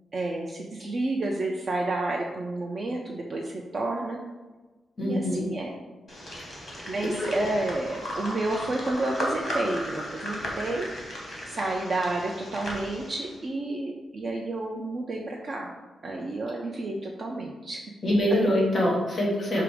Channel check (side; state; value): both; normal; correlation 0.84